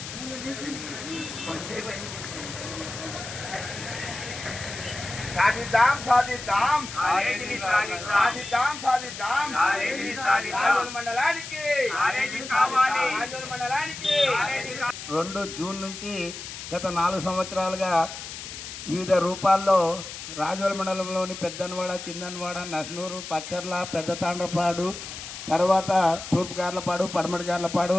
సాధిద్దాం సాధిద్దాం సాధిద్దాం సాధిద్దాం రాజోల్ మండలానికి 2 జూన్ నుంచి గత 4 సంవత్సరాలుగా వివిధ రూపాల్లో రాజోల్ మండలంలోని పెద్దనవాడ, చిన్ననవాడ, నస్నూరు, పచ్చర్ల, పెద్ద తాండ్రపాడు, తర్వాత తూర్పు గార్లపాడు, పడమటి గార్లపాడు,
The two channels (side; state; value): left; noise; hiss, 10 dB below the sound